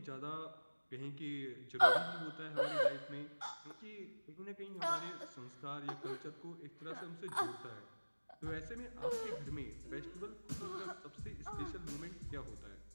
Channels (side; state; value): both; inverted; correlation -1.00